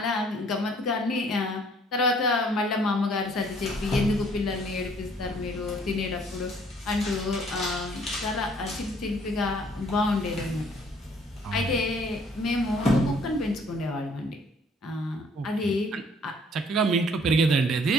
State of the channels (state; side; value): normal; both; correlation 0.60